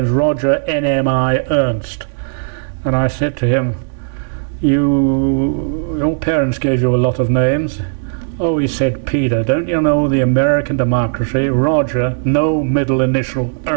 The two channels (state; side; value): silent; left; digital silence